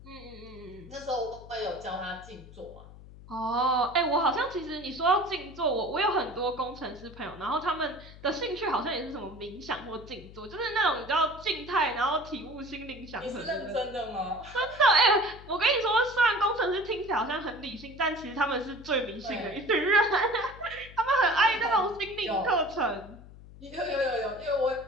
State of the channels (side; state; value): left; noise; hum, 18 dB below the sound